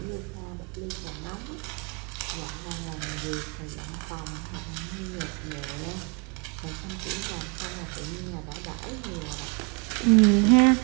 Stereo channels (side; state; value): left; quieter; 32.9 dB